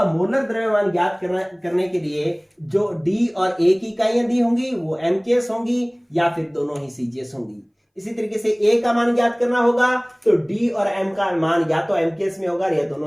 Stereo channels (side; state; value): both; identical; correlation 1.00